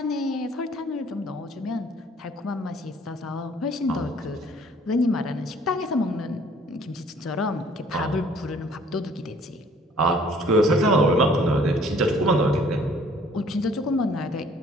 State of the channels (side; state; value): both; normal; correlation 0.57